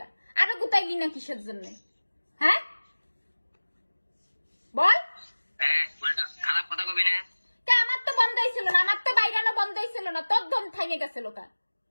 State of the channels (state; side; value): inverted; both; correlation -1.00